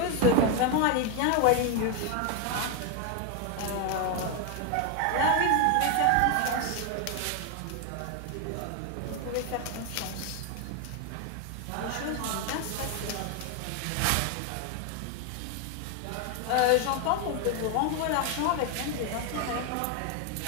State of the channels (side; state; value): both; different; correlation 0.01